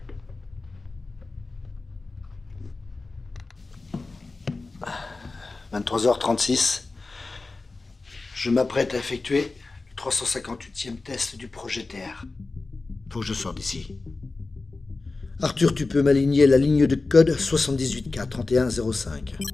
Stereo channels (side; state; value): right; quieter; 3.6 dB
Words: « 23h36. Je m'apprête à effectuer le 358e test du projet TR. Faut que je sorte d'ici. Arthur, tu peux m'aligner la ligne de code 78K3105.